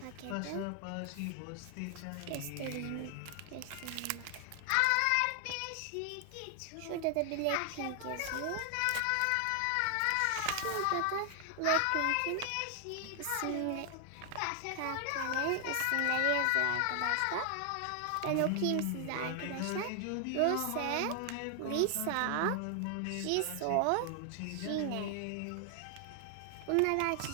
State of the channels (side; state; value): both; different; correlation 0.00